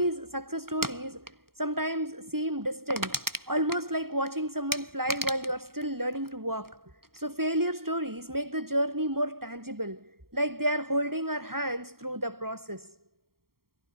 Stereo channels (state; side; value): late; left; 0.94 ms